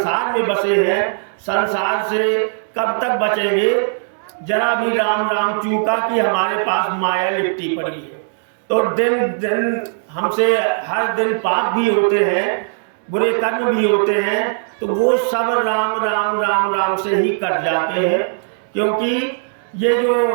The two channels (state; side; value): silent; left; digital silence